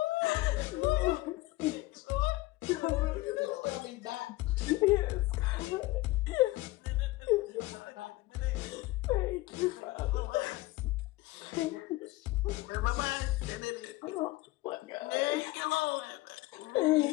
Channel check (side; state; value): right; quieter; 19.5 dB